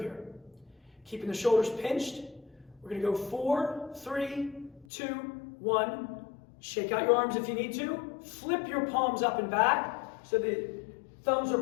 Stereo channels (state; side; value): drops out; right; at 4.9 s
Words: gear. Keeping the shoulders pinched. We're going to go 4, 3, 2, 1. Shake out your arms if you need to. Flip your palms up and back so the thumbs are